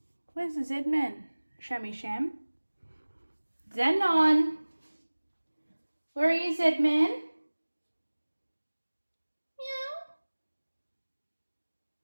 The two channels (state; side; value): inverted; both; correlation -1.00